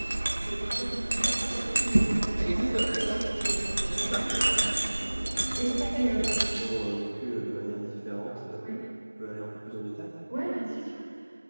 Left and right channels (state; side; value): inverted; both; correlation -1.00